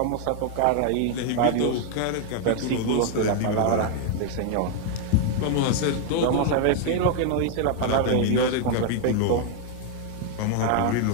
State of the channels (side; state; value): both; different; correlation 0.00